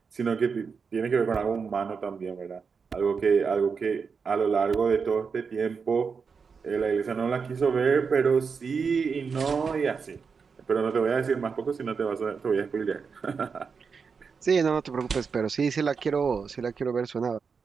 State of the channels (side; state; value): left; quieter; 5.6 dB